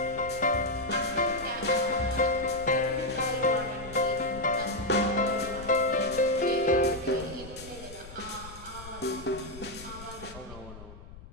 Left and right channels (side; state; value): left; noise; rumble, 16 dB below the sound